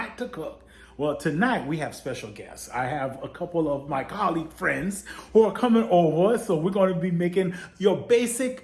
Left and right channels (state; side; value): identical; both; correlation 1.00